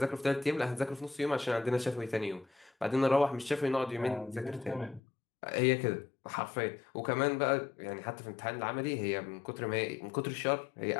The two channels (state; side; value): drops out; right; at 5.0 s